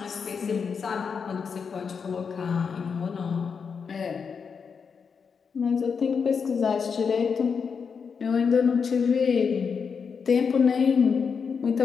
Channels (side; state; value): right; quieter; 6.0 dB